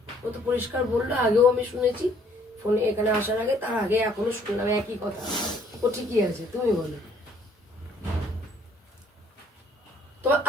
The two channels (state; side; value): normal; both; correlation 0.62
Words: ও তো পরিষ্কার বললো, আগেও আমি শুনেছি ফোনে, এখানে আসার আগে, তার আগে এখনো শুনলাম একই কথা। ও ঠিকই আছে, তুমি বলো। তোমার